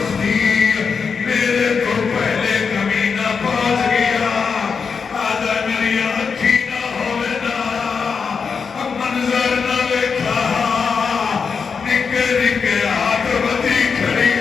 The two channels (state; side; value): quieter; right; 5.7 dB